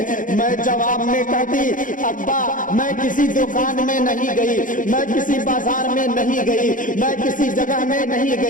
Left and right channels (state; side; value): late; right; 0.38 ms